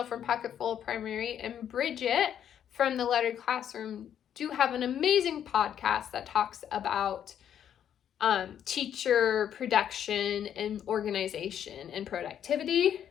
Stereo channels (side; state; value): right; quieter; 9.5 dB